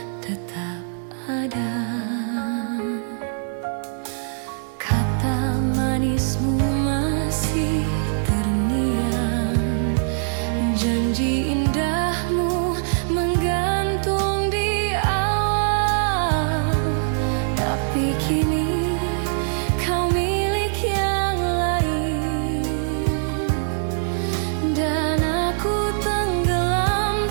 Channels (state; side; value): silent; left; digital silence